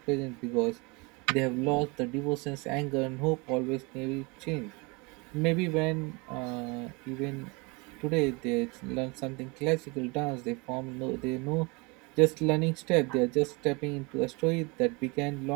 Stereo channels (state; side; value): quieter; left; 28.2 dB